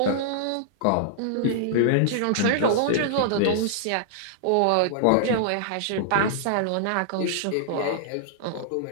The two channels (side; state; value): both; different; correlation -0.01